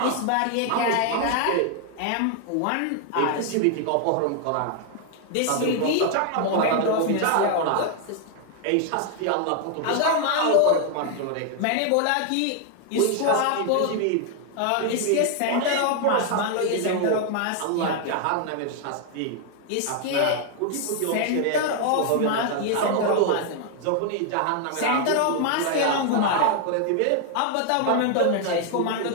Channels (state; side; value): different; both; correlation 0.00